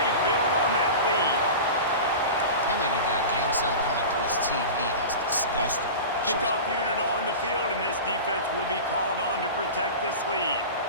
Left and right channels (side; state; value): both; inverted; correlation -0.31